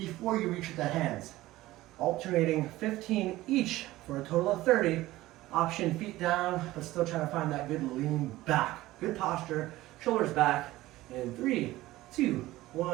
you reach the hands. Alternating 15 each for a total of 30. Option feet down, but still trying to find that good lean back. Good posture, shoulders back. In 3, 2,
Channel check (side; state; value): left; quieter; 17.1 dB